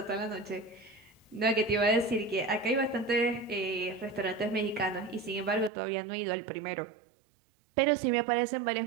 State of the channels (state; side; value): drops out; left; at 5.7 s